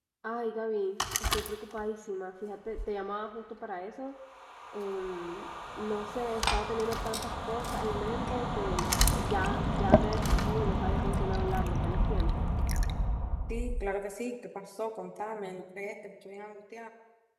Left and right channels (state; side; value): identical; both; correlation 1.00